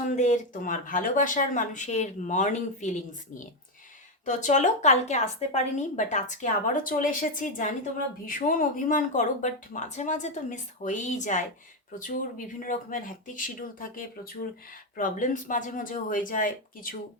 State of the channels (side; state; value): both; normal; correlation 0.07